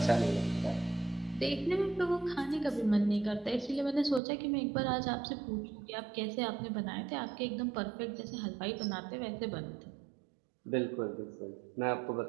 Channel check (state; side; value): drops out; left; at 4.2 s